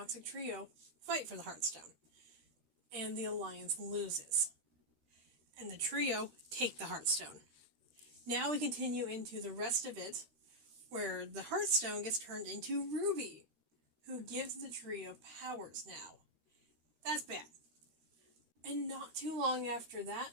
Trio fight for the Heartstone, and the Alliance loses. And the trio take the Heartstone. Now we continue into the rest of it, where the Heartstone gets turned into Ruby, who gives the trio powers now. That's bad. And not too long after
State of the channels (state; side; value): late; left; 13 ms